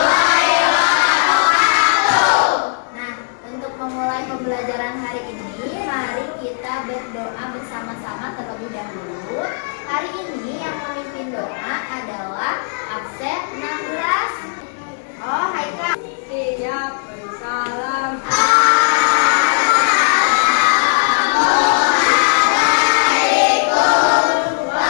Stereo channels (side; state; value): right; silent; digital silence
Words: Nah, untuk memulai pembelajaran hari ini, mari kita berdoa bersama-sama terlebih dahulu. Hari ini yang memimpin doa adalah absen 16. Oh, hai Kak. Siap, bersalam.